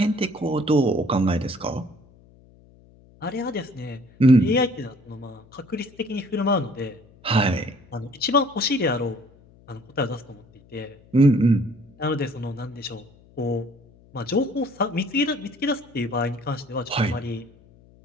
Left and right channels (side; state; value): left; noise; hum, 27 dB below the sound